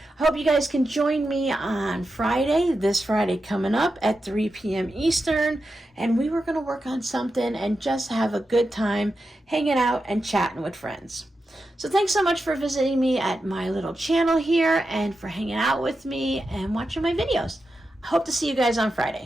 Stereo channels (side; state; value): both; normal; correlation 0.89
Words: I hope you guys can join me on Friday, this Friday coming up at 3 p.m. Eastern, and we were going to work on something and just have a good time hanging out and chatting with friends. So thanks so much for visiting me at my little channel here and for hanging out with me and watching my videos. I hope to see you guys on